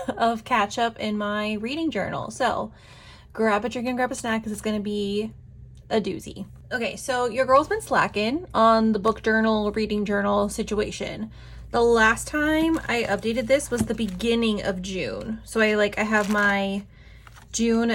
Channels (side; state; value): both; identical; correlation 1.00